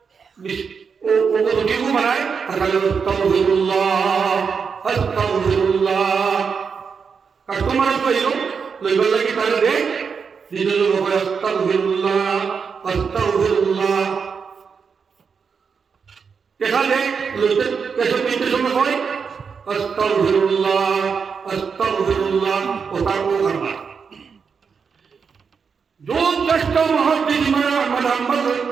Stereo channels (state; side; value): quieter; left; 5.9 dB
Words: ও রুটিও বানায় আর খালি আস্তাগফিরুল্লাহ আস্তাগফিরুল্লাহ। কাস্টমার পাইল লইবার লাগি তাহলে দেখ নিজের লোক আস্তাগফিরুল্লাহ আস্তাগফিরুল্লাহ এখানে লইতে কেসব নিতে সময় হয় আস্তাগফিরুল্লাহ আস্তাগফিরুল্লাহ ও তারপর করবা। जो दस्त मुहद्दिस अहमद अहमद